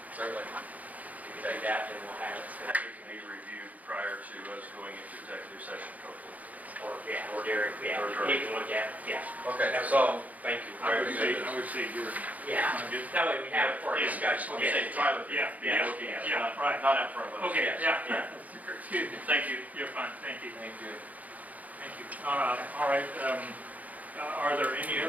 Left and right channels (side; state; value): left; late; 0.076 ms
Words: Certainly. If you take that, then we'll have it. It can be reviewed prior to us going into executive session, hopefully. Or Derek, yeah, he can look at it, yeah. Okay, so Thank you. I would say you're. Yeah, that way we have it for a discussion. I'm saying try with Yeah, be yeah, looking at it, yeah, right. not out front of us. Okay, Yes, yeah. Excuse me. Thank you. You're fine, thank you. thank you. Thank you. All right, are there any